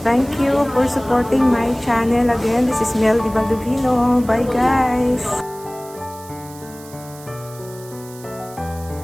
Thank you for supporting my channel again. This is Mel Di Baldovino. Bye, guys.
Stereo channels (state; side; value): noise; right; hiss, 20 dB below the sound